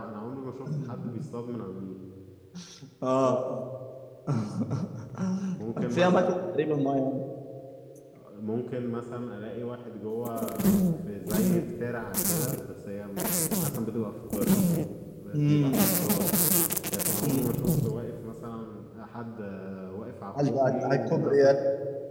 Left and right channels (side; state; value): both; identical; correlation 1.00